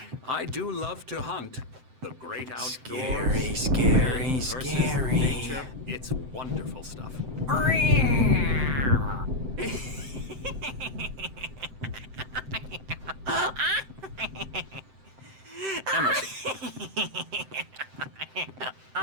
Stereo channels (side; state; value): left; late; 7.8 ms